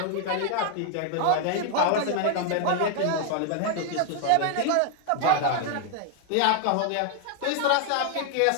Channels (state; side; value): different; both; correlation 0.00